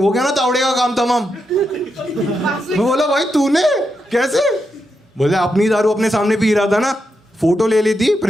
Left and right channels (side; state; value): both; normal; correlation 0.84